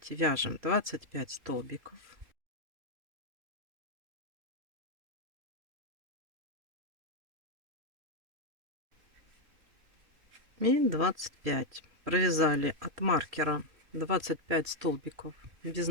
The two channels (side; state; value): left; late; 3.0 ms